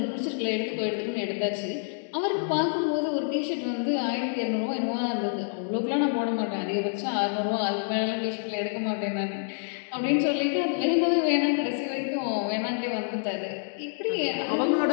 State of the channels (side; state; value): right; silent; digital silence